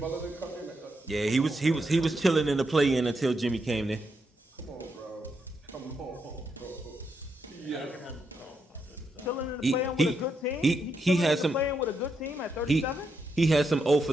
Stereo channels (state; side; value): normal; both; correlation 0.81